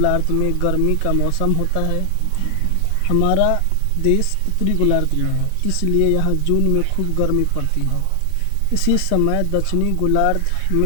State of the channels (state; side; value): different; both; correlation 0.00